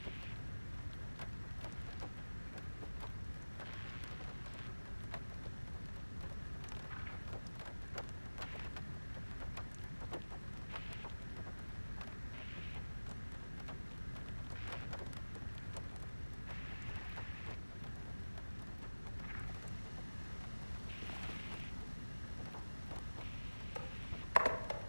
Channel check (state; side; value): inverted; both; correlation -1.00